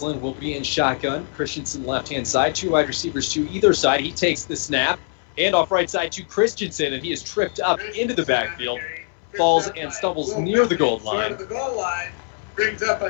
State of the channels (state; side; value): silent; right; 64 dB below the other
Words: will be in shotgun. Christensen left-hand side. 2 wide receivers to either side. He takes the snap. And off right side to Christensen, and he is tripped up into the backfield. Falls and stumbles near the goal line. The goal line brings up